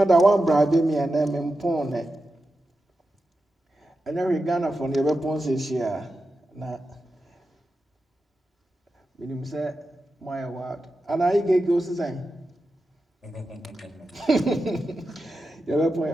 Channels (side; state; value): both; normal; correlation 0.90